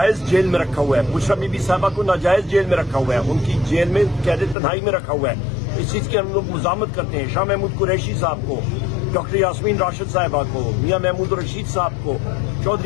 جیل میں رکھا ہوا ہے، بشرا بی بی صاحبہ کو ناجائز جیل میں رکھا ہوا ہے، ان کی جیل میں قید تنہائی میں رکھا ہوا ہے۔ اس چیز کی ہم لوگ مزاحمت کرتے ہیں۔ شاہ محمود قریشی صاحب کو، ڈاکٹر یاسمین راشد صاحبہ کو، میاں محمود رشید صاحب کو،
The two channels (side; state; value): right; drops out; at 4.5 s